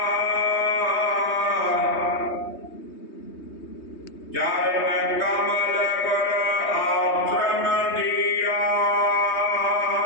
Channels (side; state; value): right; late; 3.2 ms